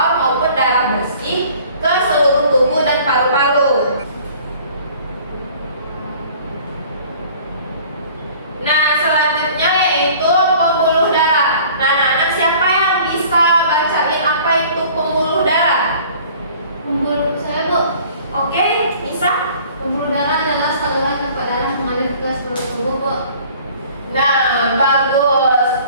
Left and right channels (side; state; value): both; inverted; correlation -0.50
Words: maupun darah bersih ke seluruh tubuh dan paru-paru. Nah, selanjutnya yaitu pembuluh darah. Nah, anak-anak, siapa yang bisa bacain apa itu pembuluh darah? Pembuluh saya, Bu. Oke, bisa? Pembuluh darah adalah saluran tempat darah mengalir ke seluruh tubuh, Bu. Nah, bagus.